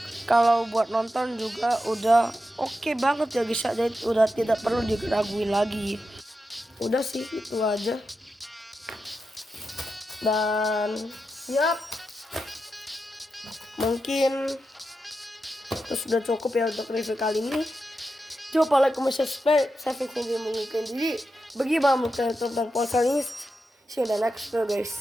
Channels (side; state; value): both; normal; correlation 0.88